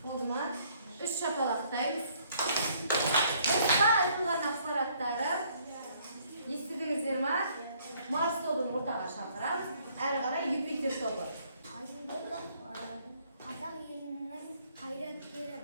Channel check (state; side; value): inverted; both; correlation -0.64